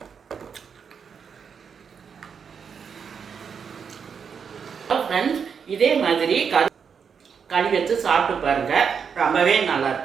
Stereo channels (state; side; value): quieter; left; 6.6 dB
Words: ஃப்ரெண்ட்ஸ், இதே மாதிரி களி வச்சு சாப்பிட்டு பாருங்கள். ரொம்பவே